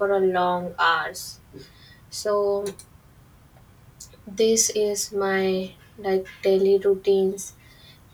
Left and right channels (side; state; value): both; identical; correlation 1.00